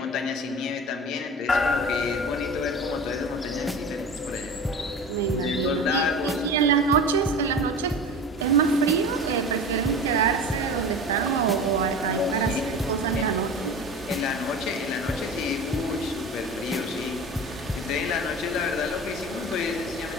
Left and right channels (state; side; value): normal; both; correlation 0.34